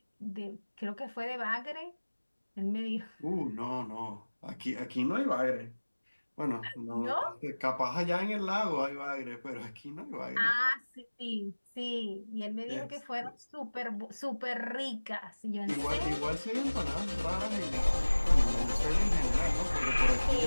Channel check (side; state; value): both; inverted; correlation -1.00